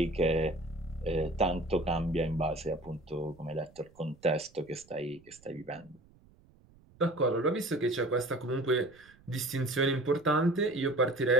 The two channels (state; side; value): noise; right; rumble, 28 dB below the sound